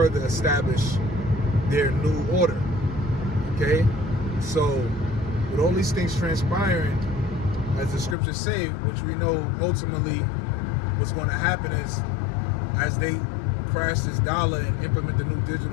establish their new order. Okay, so with all these things transpiring, as the scriptures say, which we know ultimately what's going to happen is, as they crash this dollar and implement the new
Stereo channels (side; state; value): right; drops out; at 8.2 s